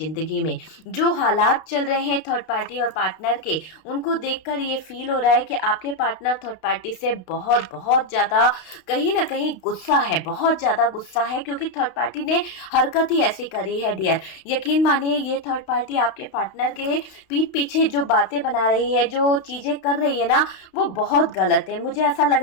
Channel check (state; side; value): late; right; 32 ms